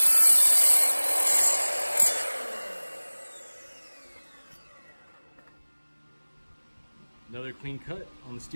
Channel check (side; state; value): both; inverted; correlation -1.00